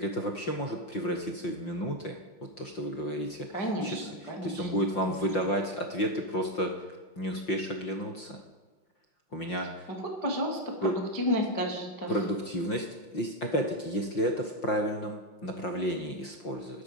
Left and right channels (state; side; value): late; right; 5.8 ms